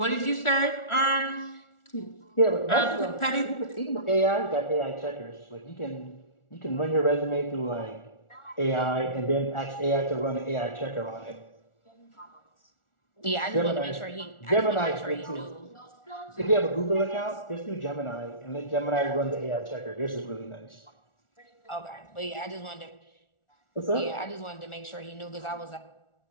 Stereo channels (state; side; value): late; right; 1.4 ms